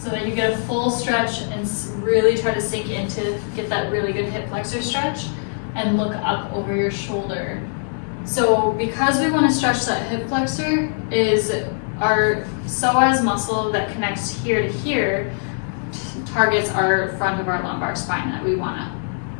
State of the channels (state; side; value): silent; right; digital silence